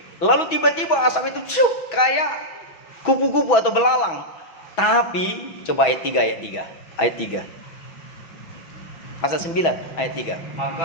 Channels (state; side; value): late; right; 6.1 ms